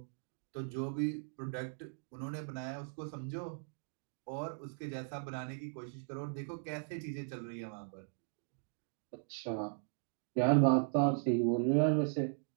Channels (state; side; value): silent; left; digital silence